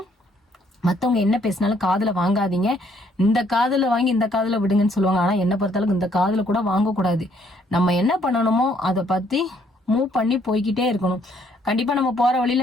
மத்தவங்க என்ன பேசினாலும் காதுல வாங்காதீங்க. இந்த காதுல வாங்கி இந்த காதுல விடுங்கன்னு சொல்லுவாங்க. ஆனா என்ன பொறுத்தளவுக்கு இந்த காதுல கூட வாங்கக்கூடாது. நம்ம என்ன பண்ணணுமோ அதை பத்தி மூவ் பண்ணி போய்கிட்டே இருக்கணும். கண்டிப்பா நம்ம போற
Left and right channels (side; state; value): both; normal; correlation 0.67